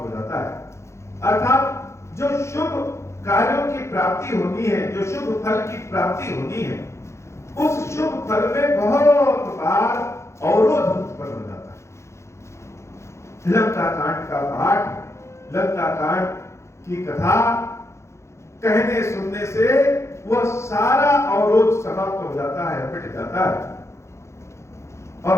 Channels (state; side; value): late; right; 0.14 ms